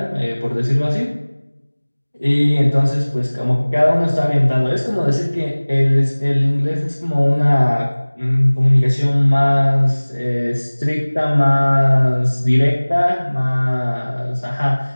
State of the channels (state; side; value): inverted; both; correlation -1.00